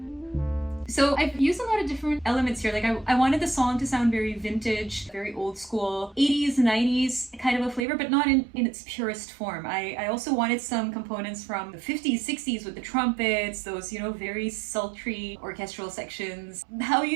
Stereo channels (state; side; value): drops out; left; at 7.9 s